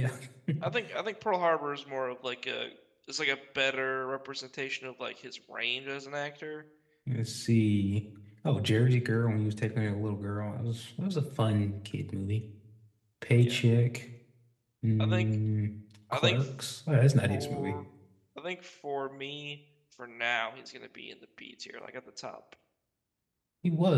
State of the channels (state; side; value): identical; both; correlation 1.00